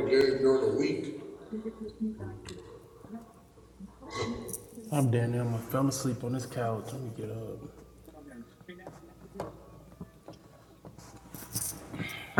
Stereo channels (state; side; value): identical; both; correlation 1.00